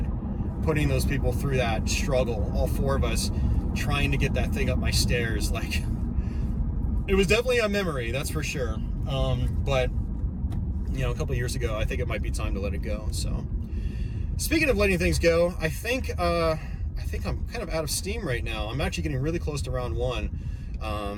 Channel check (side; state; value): both; identical; correlation 1.00